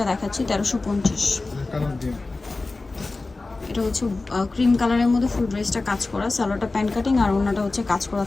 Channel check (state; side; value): quieter; right; 3.4 dB